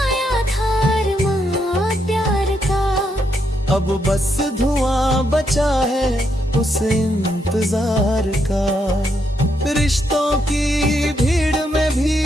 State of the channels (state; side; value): normal; both; correlation 0.78